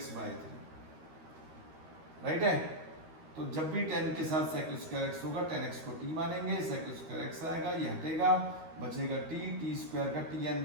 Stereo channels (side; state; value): left; late; 13 ms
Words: बाय 3, राइट है। तो जब भी 10 के साथ सेक स्क्वायर एक्स होगा 10x को t मानेंगे, सेक स्क्वायर एक्स आएगा, ये हटेगा, बचेगा टी स्क्वायर का t n